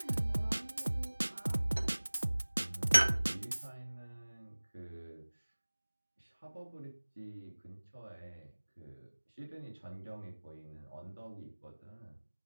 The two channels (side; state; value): both; inverted; correlation -1.00